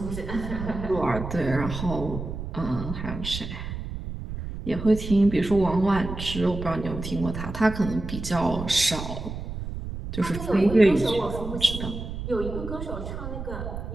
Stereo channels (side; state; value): right; noise; rumble, 7 dB below the sound